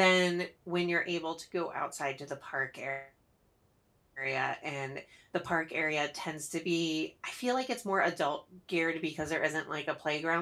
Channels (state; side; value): identical; both; correlation 1.00